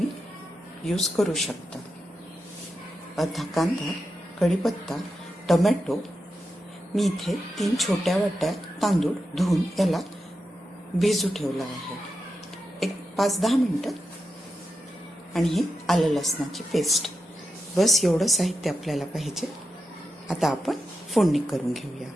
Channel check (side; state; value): both; normal; correlation 0.88